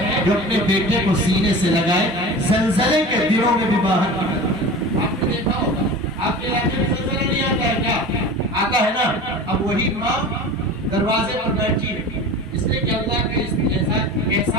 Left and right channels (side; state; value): both; normal; correlation 0.35